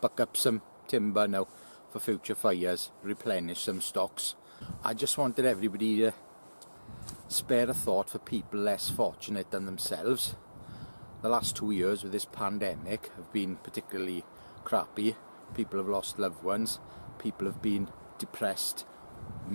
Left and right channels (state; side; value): inverted; both; correlation -1.00